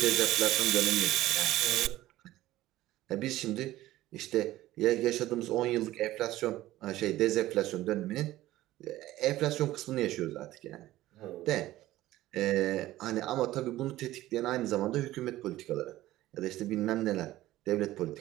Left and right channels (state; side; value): quieter; left; 15.8 dB